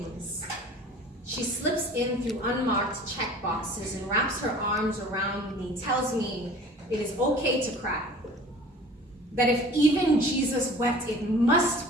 she slips in through unmarked check boxes and wraps her arms around me, tells me it is okay to cry. That if even Jesus wept, it must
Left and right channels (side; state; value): both; normal; correlation 0.45